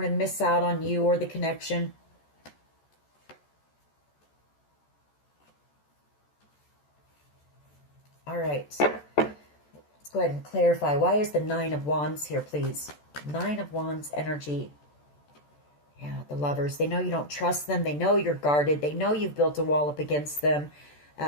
to miss out on you or the connection. All right. Let's go ahead and clarify. Why is the Nine of Wands here, please? Nine of Wands energy. Yeah, the Lovers. They know you don't trust them. They know you're guarded. They know you've built a wall up against them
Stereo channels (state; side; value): late; right; 14 ms